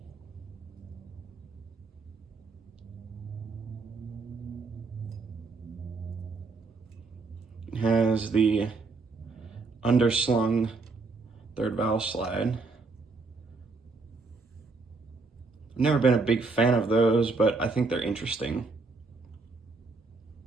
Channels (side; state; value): left; quieter; 4.0 dB